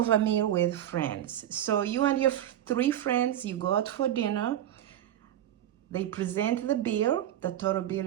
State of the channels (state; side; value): quieter; left; 11.7 dB